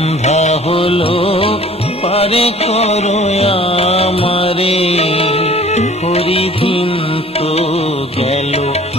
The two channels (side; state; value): both; normal; correlation 0.50